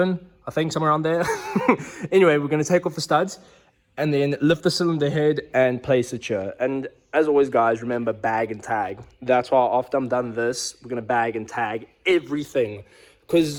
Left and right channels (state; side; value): identical; both; correlation 1.00